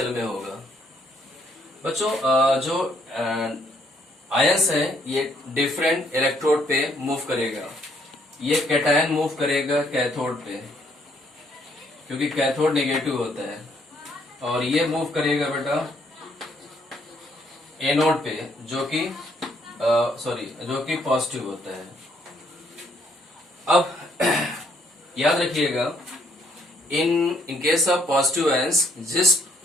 में होगा। बच्चों जो आयंस है ये डिफरेंट इलेक्ट्रोड पे मूव करेगा। ये कैटायन मूव करेगा कैथोड पे, क्योंकि कैथोड नेगेटिव होता है, और ये मूव करेगा बेटा एनोड पे, जो कि जो कि पॉजिटिव होता है। अब याद रखिएगा, in case of positive ions,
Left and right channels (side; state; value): both; normal; correlation 0.69